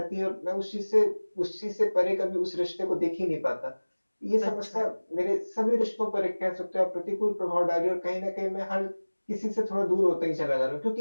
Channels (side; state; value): both; inverted; correlation -1.00